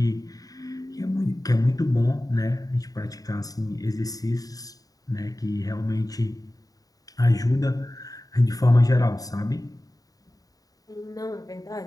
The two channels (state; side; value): late; right; 0.18 ms